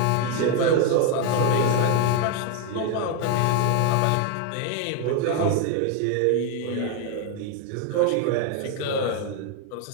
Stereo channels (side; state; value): both; different; correlation 0.01